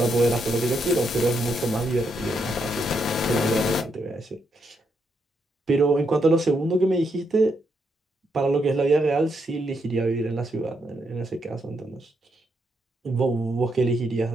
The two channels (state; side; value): normal; both; correlation 0.79